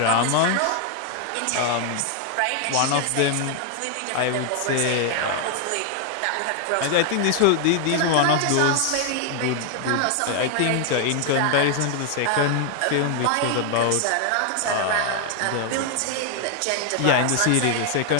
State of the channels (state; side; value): different; both; correlation 0.00